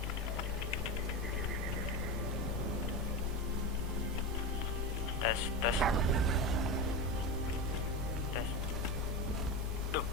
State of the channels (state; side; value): normal; both; correlation 0.20